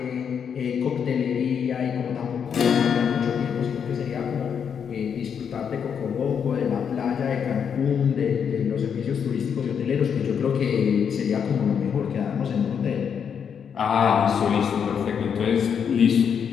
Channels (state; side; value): quieter; right; 7.4 dB